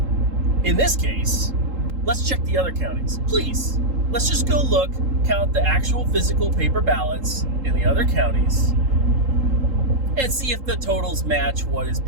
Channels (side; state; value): left; late; 3.8 ms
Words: in this case, let's check the other counties. Please, let's just go look, count the actual physical paper ballots in the other counties, and see if the totals match what is